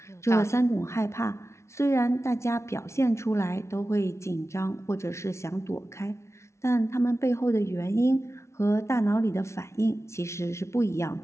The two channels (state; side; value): late; right; 0.13 ms